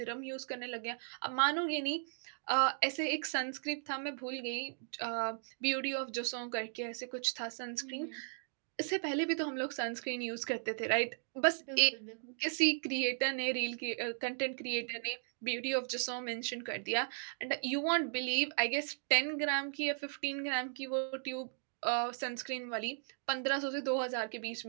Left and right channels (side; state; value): left; silent; digital silence